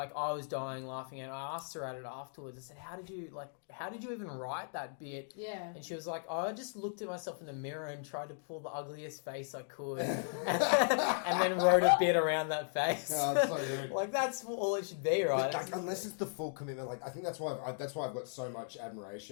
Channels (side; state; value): right; silent; digital silence